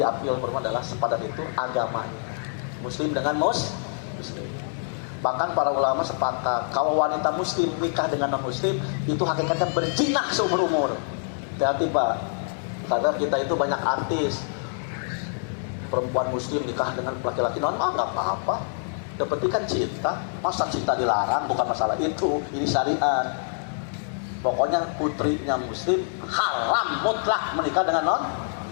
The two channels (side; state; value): right; silent; 61 dB below the other